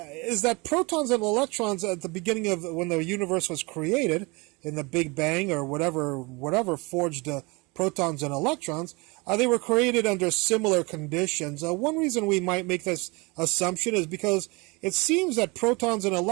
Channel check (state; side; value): quieter; left; 26.9 dB